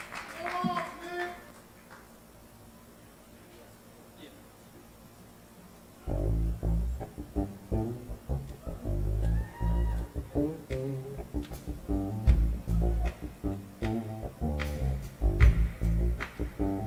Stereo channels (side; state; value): both; identical; correlation 1.00